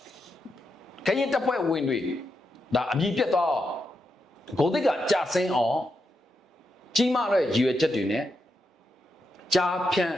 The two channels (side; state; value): both; normal; correlation 0.84